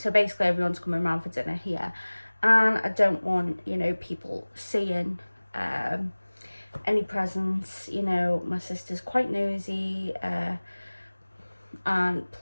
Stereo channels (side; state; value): both; inverted; correlation -1.00